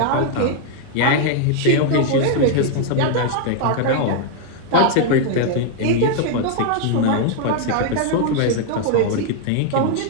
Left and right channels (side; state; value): both; different; correlation 0.00